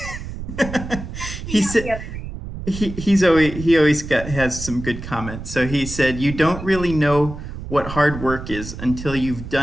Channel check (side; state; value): right; noise; rumble, 9 dB below the sound